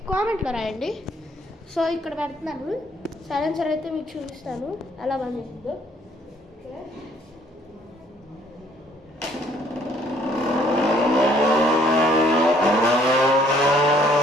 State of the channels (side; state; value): both; normal; correlation 0.62